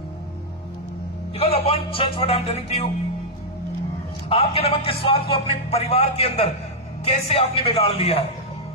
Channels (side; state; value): both; normal; correlation -0.07